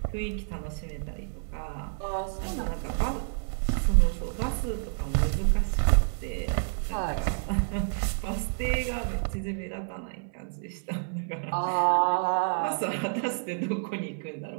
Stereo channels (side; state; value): left; silent; 59 dB below the other